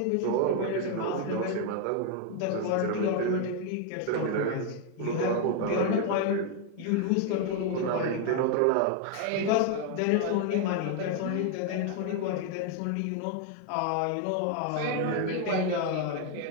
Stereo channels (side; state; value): both; different; correlation 0.01